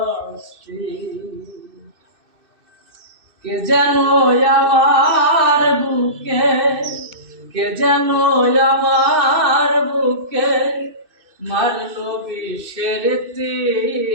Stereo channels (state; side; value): late; left; 2.6 ms